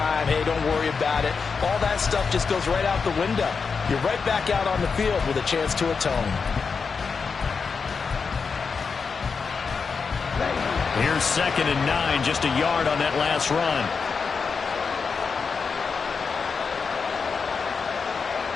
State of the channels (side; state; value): right; quieter; 5.3 dB